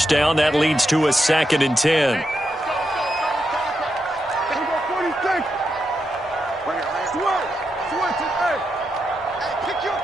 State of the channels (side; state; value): both; normal; correlation 0.85